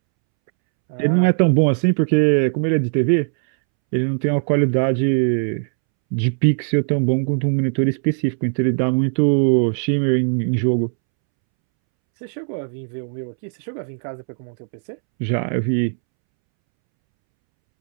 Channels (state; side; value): silent; left; 66 dB below the other